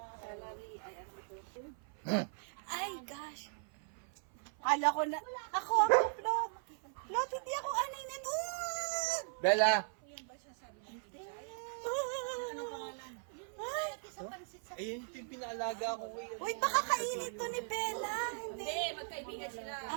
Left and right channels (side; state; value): left; silent; 52 dB below the other